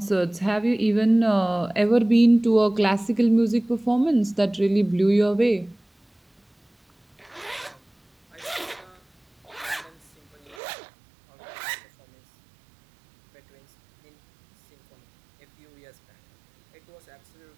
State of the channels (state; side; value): drops out; left; at 10.6 s